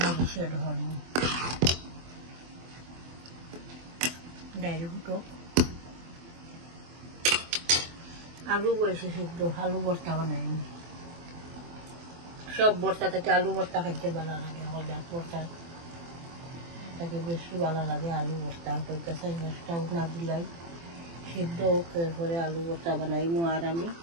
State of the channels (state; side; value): late; left; 24 ms